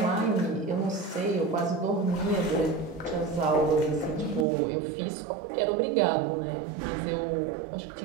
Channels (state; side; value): drops out; left; at 4.5 s